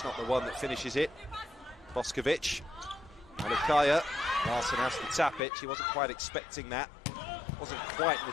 not the one that finishes it. Boskovic, Alikaya, Larson has to tap it, she wasn't quite expecting that. Wasn't quite an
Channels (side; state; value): right; drops out; at 5.4 s